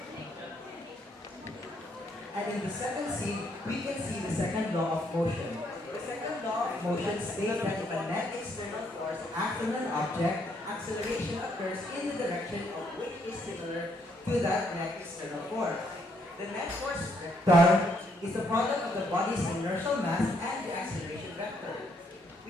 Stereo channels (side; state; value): both; normal; correlation 0.72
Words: And in the second scene, we can see the second law of motion. The second law of motion states that if a net external force acts on an object, acceleration occurs in the direction of which is similar to that net external force. The net force vector is the product of the body's inertial mass and the acceleration vector.